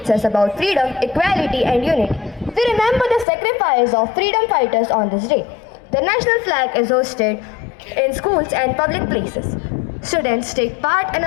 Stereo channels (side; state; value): right; drops out; at 3.2 s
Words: us about freedom, equality and unity. We remember the sacrifice of freedom fighters on this day. The national flag is hosted in schools and public places. Students take part in